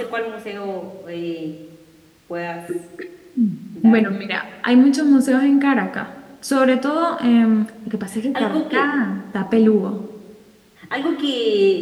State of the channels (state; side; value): identical; both; correlation 1.00